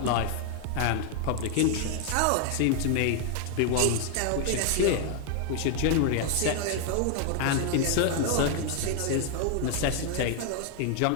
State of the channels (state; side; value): different; both; correlation 0.00